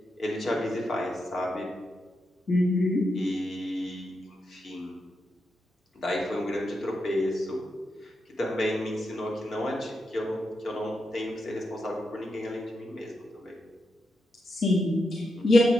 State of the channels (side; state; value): both; normal; correlation 0.85